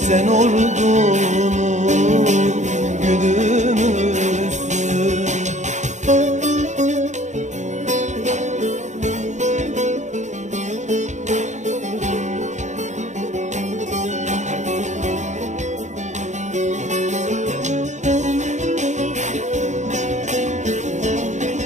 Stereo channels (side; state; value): left; late; 0.34 ms